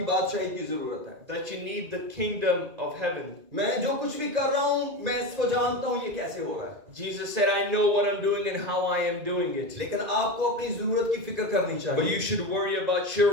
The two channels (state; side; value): late; left; 2.5 ms